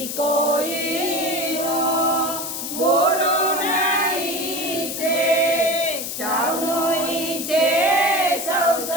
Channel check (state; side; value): noise; left; hiss, 5 dB below the sound